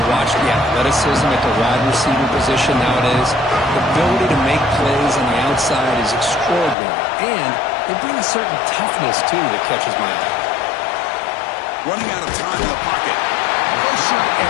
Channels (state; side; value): drops out; right; at 6.8 s